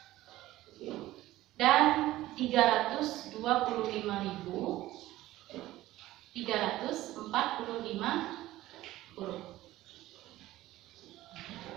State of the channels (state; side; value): quieter; left; 16.0 dB